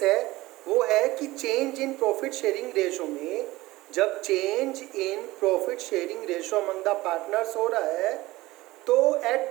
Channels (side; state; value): left; quieter; 18.9 dB